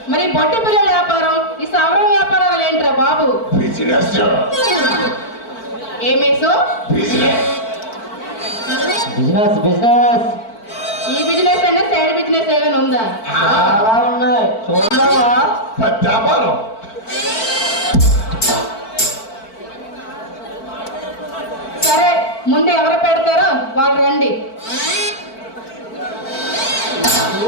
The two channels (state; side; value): late; right; 4.5 ms